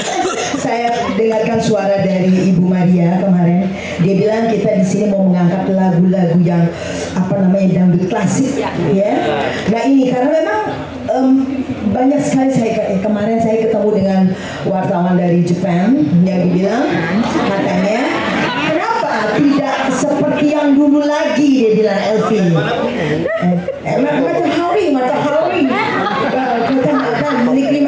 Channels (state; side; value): identical; both; correlation 1.00